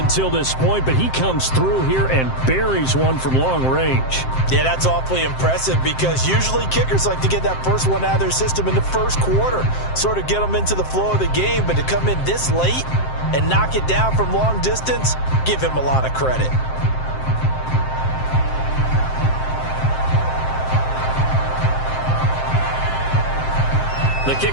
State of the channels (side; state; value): right; late; 7.7 ms